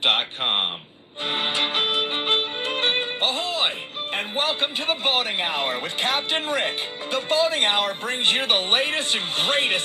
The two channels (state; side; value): identical; both; correlation 1.00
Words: Ahoy! And welcome to the Boating Hour with Captain Rick. The Boating Hour brings you the latest and